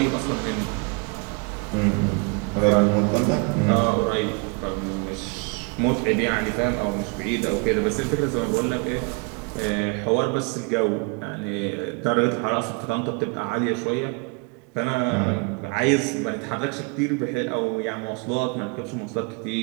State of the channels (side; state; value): left; quieter; 31.9 dB